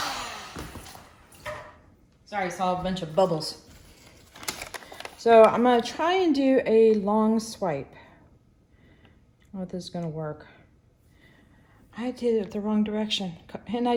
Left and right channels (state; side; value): identical; both; correlation 1.00